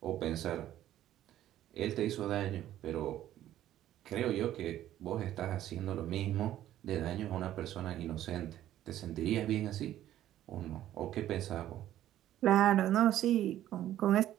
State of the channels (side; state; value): left; quieter; 12.7 dB